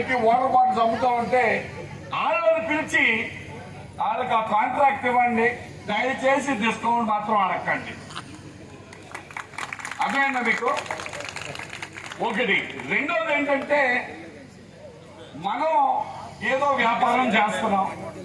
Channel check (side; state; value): both; identical; correlation 1.00